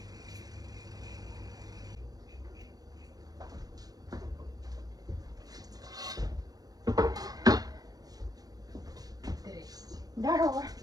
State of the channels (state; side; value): late; left; 0.18 ms